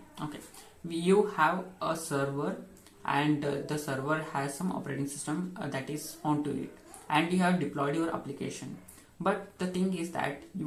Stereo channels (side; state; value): both; identical; correlation 1.00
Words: Okay, you have a server and the server has some operating system that is onto it, and you have deployed your application. But the thing is that